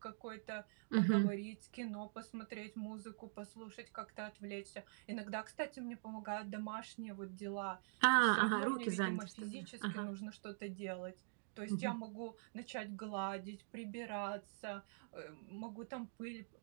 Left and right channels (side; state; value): left; silent; digital silence